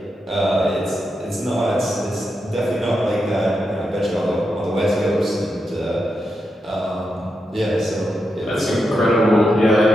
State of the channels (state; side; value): normal; both; correlation 0.86